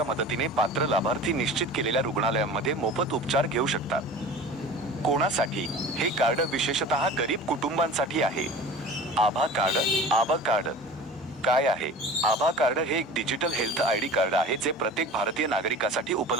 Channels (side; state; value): both; normal; correlation 0.38